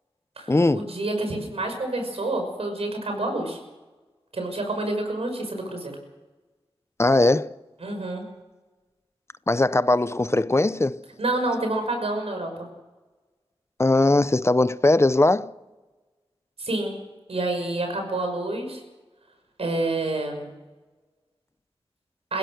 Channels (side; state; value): both; normal; correlation 0.80